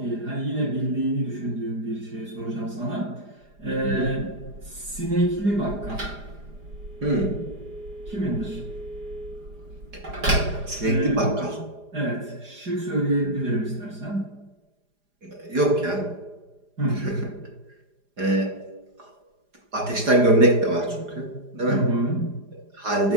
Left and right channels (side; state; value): left; late; 4.9 ms